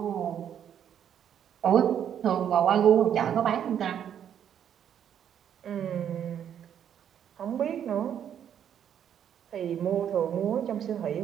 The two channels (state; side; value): quieter; left; 9.2 dB